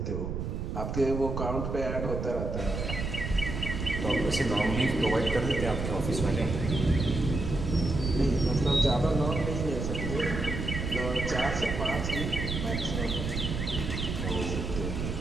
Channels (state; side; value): noise; right; rumble, 3 dB below the sound